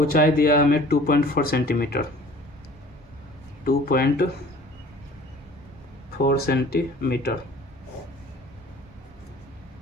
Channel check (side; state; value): both; normal; correlation 0.48